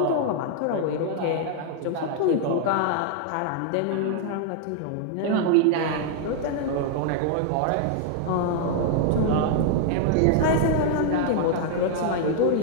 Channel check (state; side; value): different; both; correlation 0.00